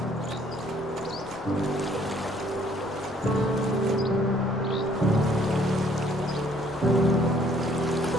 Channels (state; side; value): normal; both; correlation 0.63